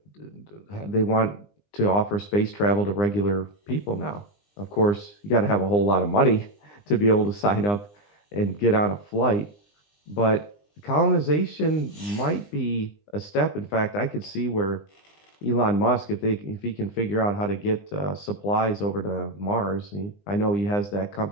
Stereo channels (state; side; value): late; right; 20 ms